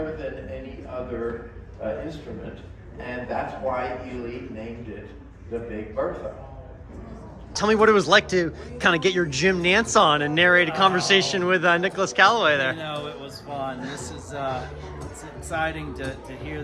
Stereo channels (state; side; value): identical; both; correlation 1.00